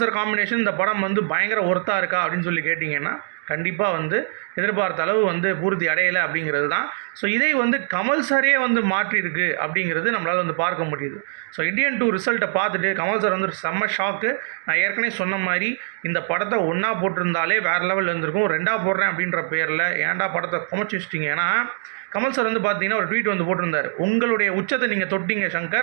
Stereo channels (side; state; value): left; silent; digital silence